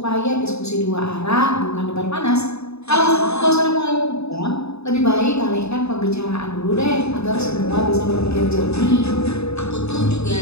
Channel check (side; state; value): right; late; 0.79 ms